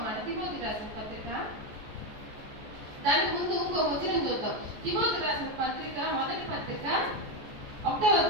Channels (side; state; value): left; late; 14 ms